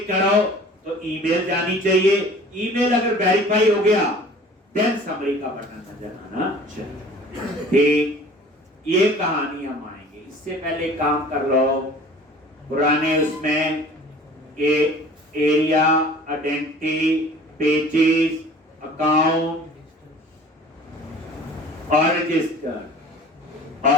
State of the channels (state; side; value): normal; both; correlation 0.46